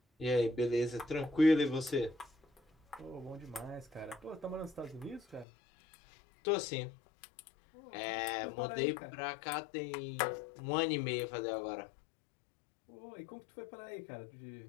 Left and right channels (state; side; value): drops out; right; at 5.5 s